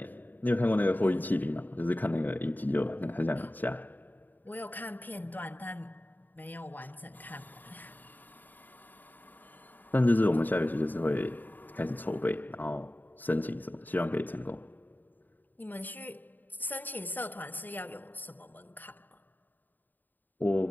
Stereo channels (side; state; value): right; late; 0.088 ms